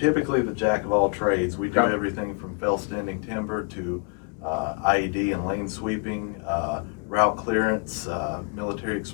the jack of all trades. We do everything from fell standing timber to IED and lane sweeping, route clearance, military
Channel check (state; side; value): quieter; right; 36.5 dB